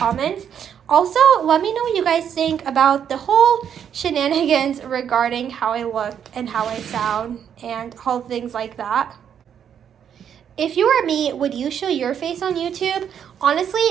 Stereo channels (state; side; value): quieter; left; 8.6 dB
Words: Also, let me know what you guys think about the whole shenanigans regarding how I look and how I sound and all things like that. If you were me, would you show your face on YouTube? Honestly,